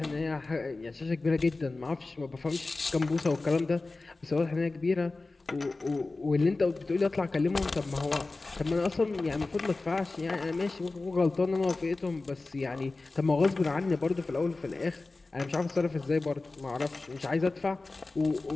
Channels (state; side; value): quieter; right; 3.4 dB